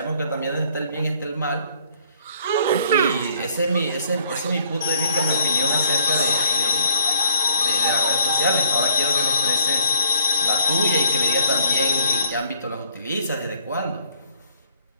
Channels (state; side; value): inverted; both; correlation -0.59